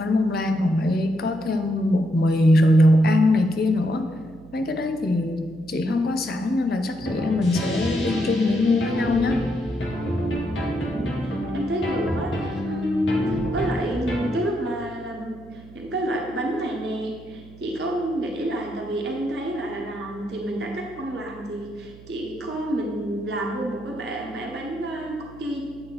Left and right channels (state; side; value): noise; right; hum, 20 dB below the sound